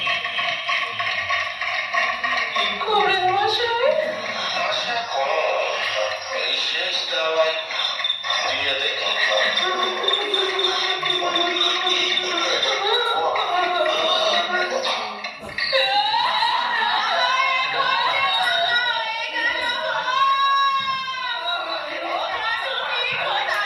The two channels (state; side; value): identical; both; correlation 1.00